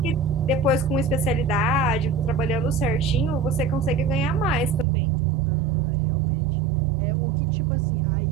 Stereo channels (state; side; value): drops out; left; at 4.9 s